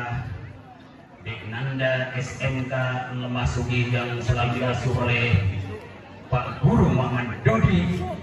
Deknanda SMK memasuki yang selalu diasuh oleh Pak Guru Muhammad Dodi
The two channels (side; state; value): both; identical; correlation 1.00